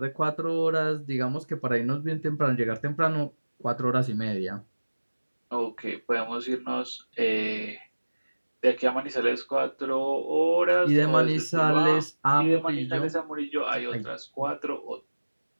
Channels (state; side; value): inverted; both; correlation -1.00